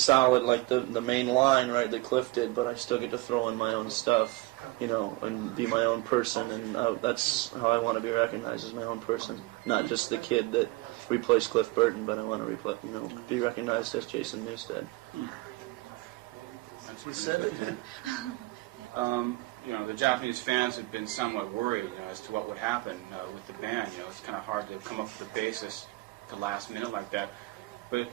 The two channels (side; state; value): left; quieter; 21.4 dB